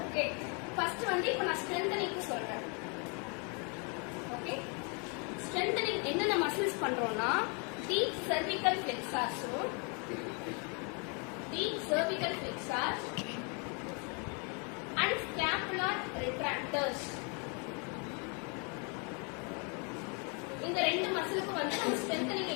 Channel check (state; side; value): quieter; right; 35.5 dB